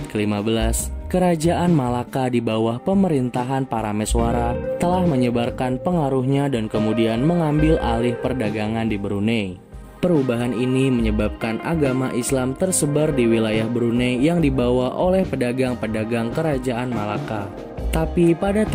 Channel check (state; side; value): identical; both; correlation 1.00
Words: ke-15, Kerajaan Malaka di bawah pemerintahan Parameswara telah menyebarkan pengaruhnya dan kemudian mengambil alih perdagangan di Brunei. Perubahan ini menyebabkan agama Islam tersebar di wilayah Brunei yang dibawa oleh pedagang-pedagang Kerajaan Malaka. Tapi pada